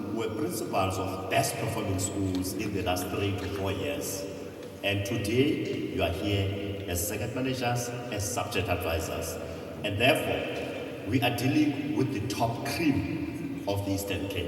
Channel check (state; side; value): identical; both; correlation 1.00